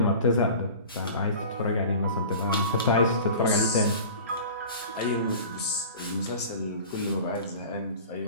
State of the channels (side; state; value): both; inverted; correlation -0.39